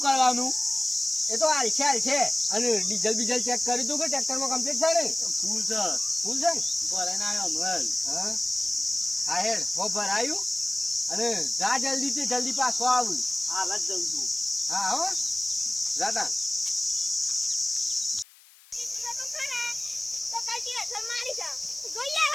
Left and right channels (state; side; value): noise; left; hiss, 25 dB below the sound